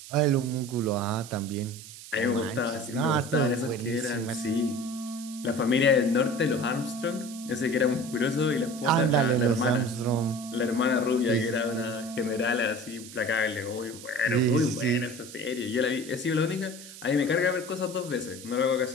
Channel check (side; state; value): right; noise; hiss, 15 dB below the sound